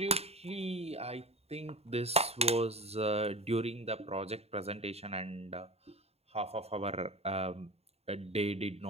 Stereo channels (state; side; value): late; left; 0.30 ms